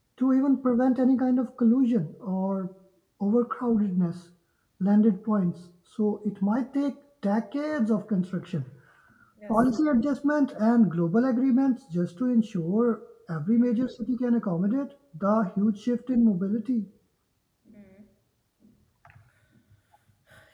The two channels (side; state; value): both; identical; correlation 1.00